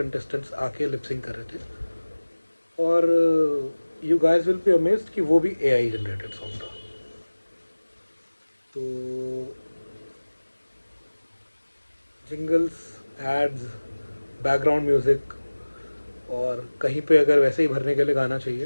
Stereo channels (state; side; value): inverted; both; correlation -1.00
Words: आके लिपसिंग कर रहे थे। और you guys will be amazed कि वो भी एआई जनरेटेड सॉन्ग था। तो जिंगल्स, एड्स, बैकग्राउंड म्यूज़िक और कहीं पे अगर वैसे ही भरने के लिए गाना